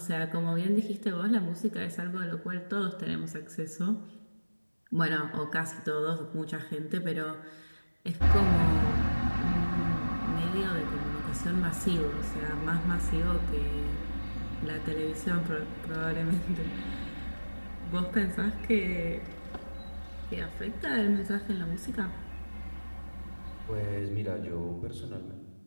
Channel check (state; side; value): inverted; both; correlation -1.00